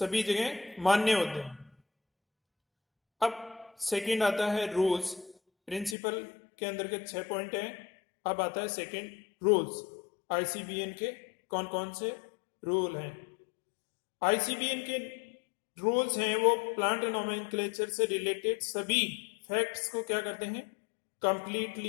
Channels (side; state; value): right; drops out; at 6.0 s